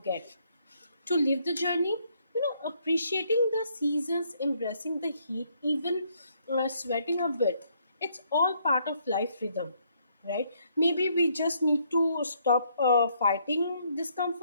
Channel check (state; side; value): inverted; both; correlation -0.70